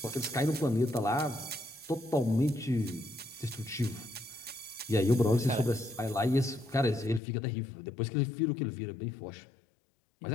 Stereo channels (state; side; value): drops out; right; at 7.2 s